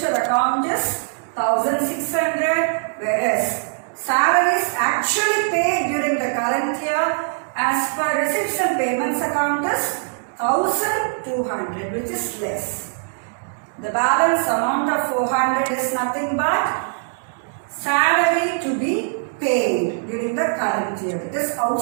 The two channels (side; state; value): left; silent; digital silence